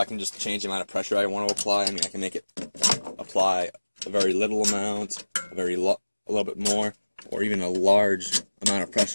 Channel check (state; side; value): inverted; both; correlation -1.00